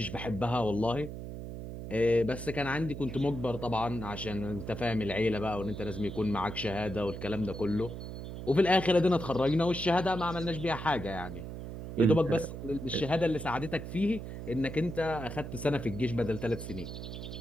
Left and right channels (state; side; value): noise; right; hum, 8 dB below the sound